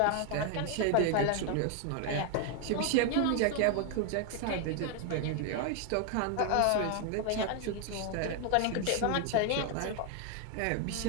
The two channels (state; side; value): different; both; correlation 0.01